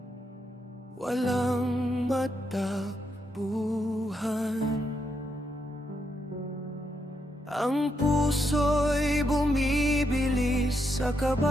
walang matakbuhan. Ang puso'y bumibilis sa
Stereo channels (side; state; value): both; normal; correlation 0.80